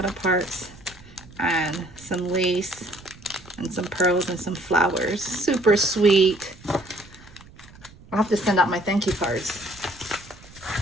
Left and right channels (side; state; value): right; noise; rumble, 22 dB below the sound